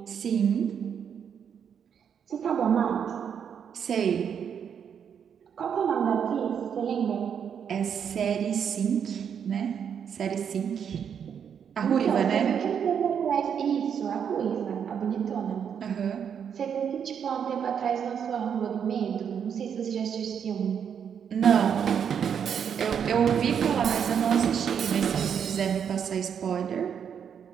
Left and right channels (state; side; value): quieter; left; 7.8 dB